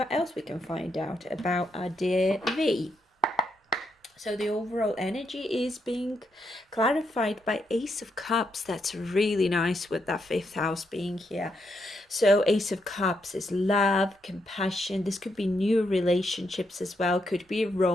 else we can find out about our dear V. So the overall energy is being clarified by Ace of Cups. That's really nice with that fifth house being here. So Ace of Cups is love, compassion. This could be new relationships as well. Could be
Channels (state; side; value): normal; both; correlation 0.79